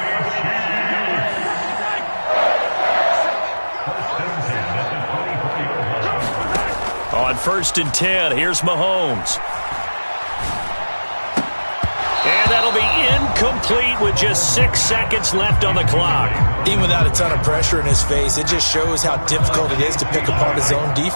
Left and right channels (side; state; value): both; inverted; correlation -1.00